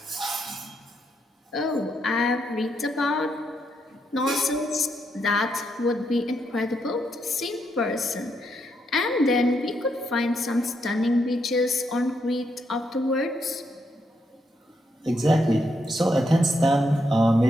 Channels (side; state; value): both; normal; correlation 0.78